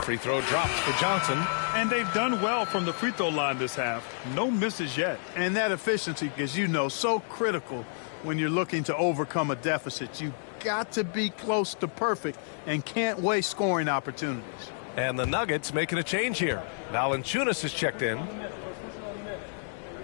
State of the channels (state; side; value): silent; right; 58 dB below the other